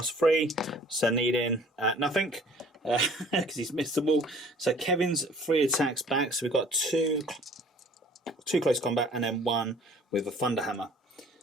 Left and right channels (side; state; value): both; normal; correlation 0.53